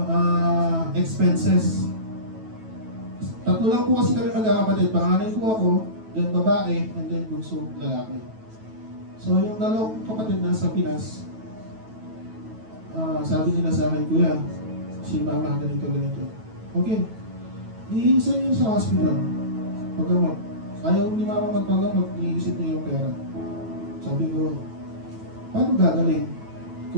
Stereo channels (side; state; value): left; late; 9.2 ms